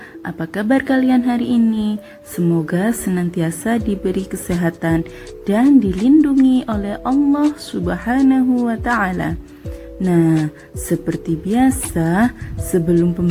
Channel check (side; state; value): both; identical; correlation 1.00